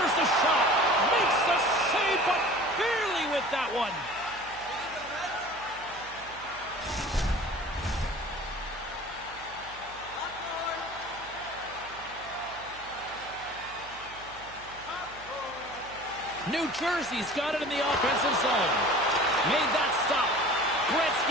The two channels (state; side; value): noise; right; hum, 21 dB below the sound